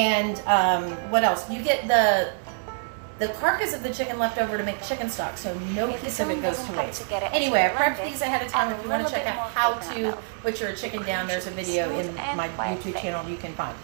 what else? You get the carcass of the chicken left over to make chicken stock, so no If the piece of it filling goes doesn't to come waste. together as you Anyway, I blend prepped it, these ahead of time. add If a you want little to check bit out more how coconut to milk. butcher a chicken The down, cream there's a should be video smooth in and my quite YouTube thick. channel you can find.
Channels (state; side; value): silent; left; digital silence